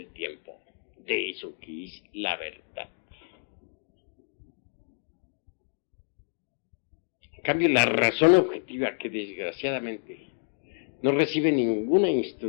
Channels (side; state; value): right; silent; digital silence